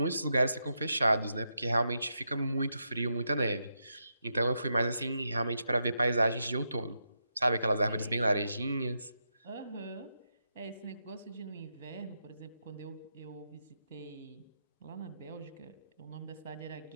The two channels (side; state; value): both; inverted; correlation -0.84